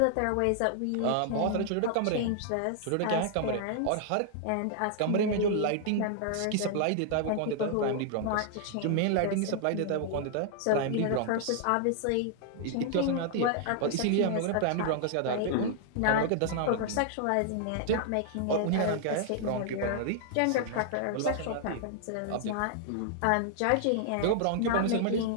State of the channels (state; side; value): different; both; correlation -0.01